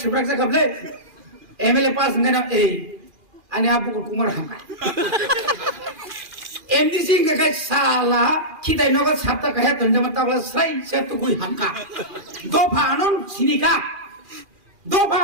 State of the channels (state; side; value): late; left; 2.4 ms